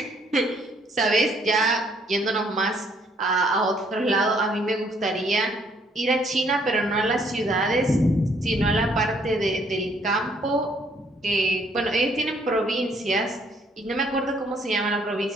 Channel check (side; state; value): both; normal; correlation 0.66